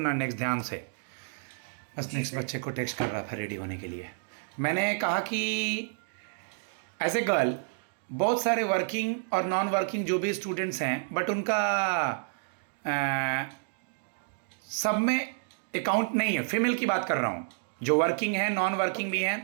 नेक्स्ट ध्यान से। बस जी नेक्स्ट सर। बच्चे को टेक्स्ट कर रहा था रेडी होने के लिए। मैंने कहा कि एज ए गर्ल बहुत सारे वर्किंग और नॉन वर्किंग जो भी स्टूडेंट्स हैं, बट उनका सब में अकाउंट नहीं है। फीमेल की बात कर रहा हूँ, जो वर्किंग है, नॉन वर्किंग भी है।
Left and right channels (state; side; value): silent; left; digital silence